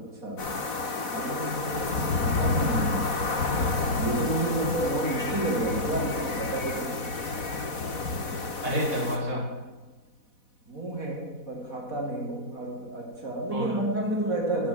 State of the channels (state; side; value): late; right; 4.1 ms